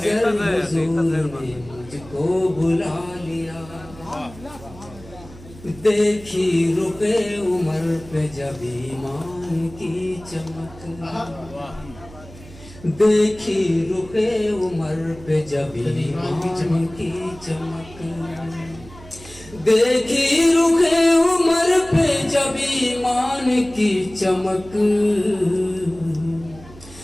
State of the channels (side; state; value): right; noise; hum, 19 dB below the sound